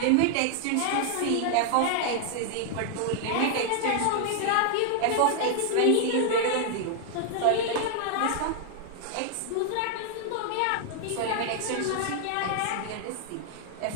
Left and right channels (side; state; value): both; different; correlation 0.00